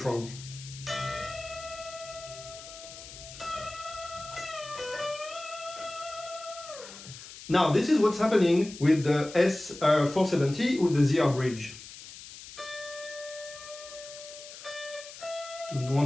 Now, this is what's happening with the S470 with the ZR bridge. You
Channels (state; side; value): noise; left; hiss, 15 dB below the sound